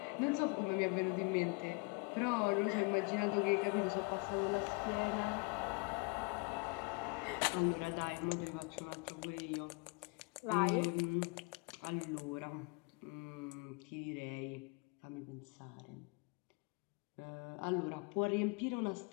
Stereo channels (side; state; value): right; quieter; 31.1 dB